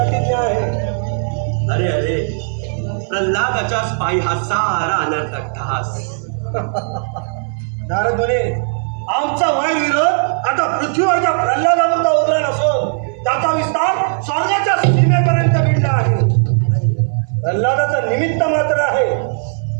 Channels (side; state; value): left; silent; 60 dB below the other